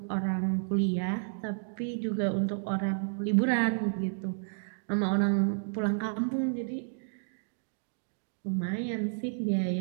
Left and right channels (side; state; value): left; silent; digital silence